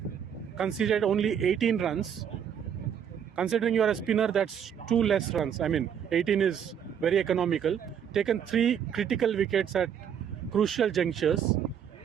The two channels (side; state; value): left; quieter; 8.4 dB